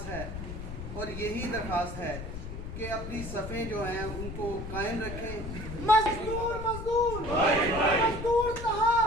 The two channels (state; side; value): noise; left; rumble, 8 dB below the sound